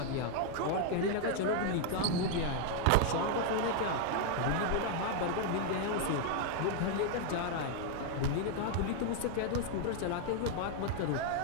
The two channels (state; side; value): different; both; correlation 0.00